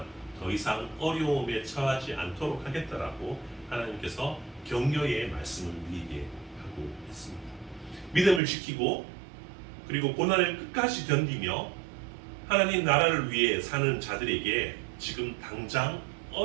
더 이상 어려움에 처하지 않도록 하겠다라고 하나님께서 격려의 말씀을 우리에게 하고 있습니다. 믿음을 지키고 그리고 고난을 끝까지 견디며 하나님 나라를 위해 사는 자들에게 지금 당장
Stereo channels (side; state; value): left; drops out; at 8.4 s